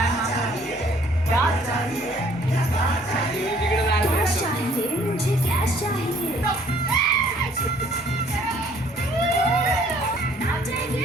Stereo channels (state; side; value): normal; both; correlation 0.60